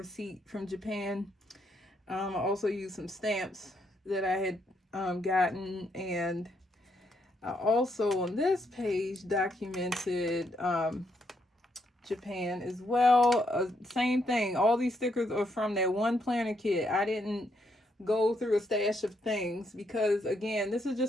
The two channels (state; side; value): normal; both; correlation 0.76